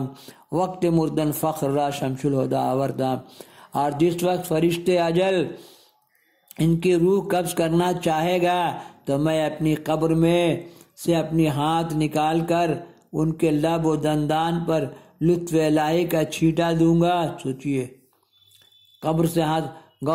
وقت مردن فخر را شمس الہدا آوردام۔ اور جس وقت فرشتے اجل ان کی روح قبض کرنا چاہے گا تو میں اپنی قبر میں سے اپنی ہاتھ نکال کر ان کے لب و دندان پر لطف الہی کا چھینٹا دوں گا۔ سوچئے قبر سے ہاتھ،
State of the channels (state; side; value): identical; both; correlation 1.00